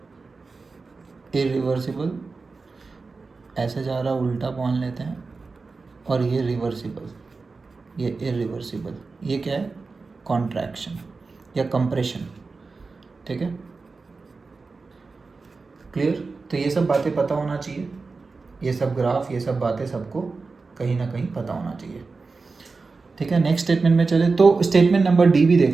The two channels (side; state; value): left; quieter; 4.2 dB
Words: इरिवर्सिबल ऐसे जा रहा उल्टा मान लेते हैं, और ये रिवर्सिबल, ये इरिवर्सिबल, ये क्या है, कॉन्ट्रैक्शन या कंप्रेशन। ठीक है, क्लियर। तो ये सब बातें पता होना चाहिए, ये सब ग्राफ, ये सब बातें सबको कहीं ना कहीं पता होना चाहिए। ठीक है, नेक्स्ट स्टेटमेंट में चले तो स्टेटमेंट नंबर डी भी